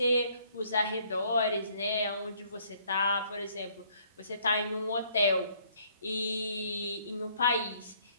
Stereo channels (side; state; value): both; inverted; correlation -0.64